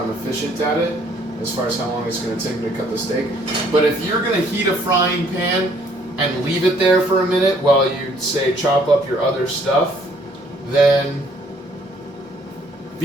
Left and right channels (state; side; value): normal; both; correlation 0.63